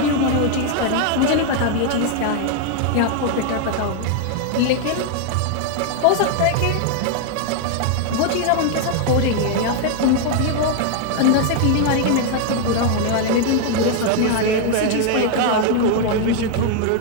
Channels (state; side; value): different; both; correlation 0.00